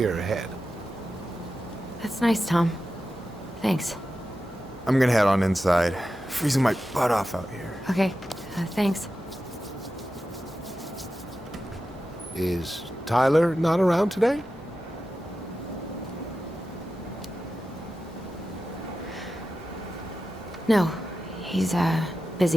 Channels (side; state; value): both; normal; correlation 0.92